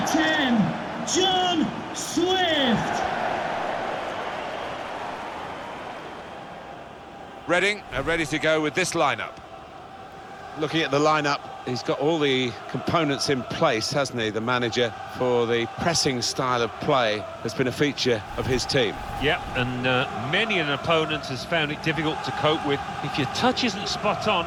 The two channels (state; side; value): identical; both; correlation 1.00